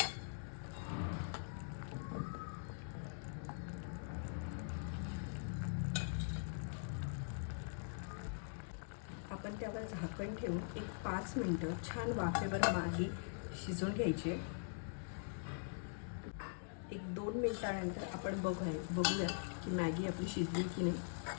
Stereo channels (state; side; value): silent; right; digital silence